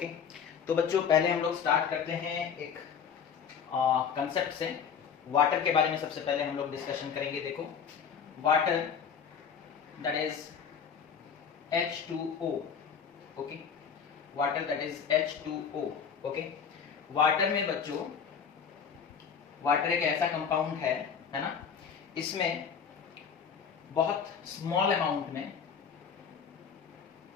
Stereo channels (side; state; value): right; quieter; 7.0 dB